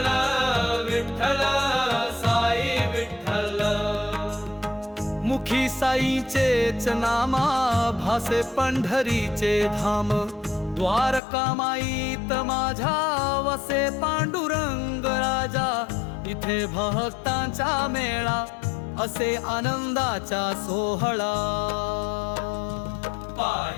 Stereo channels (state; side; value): drops out; right; at 11.2 s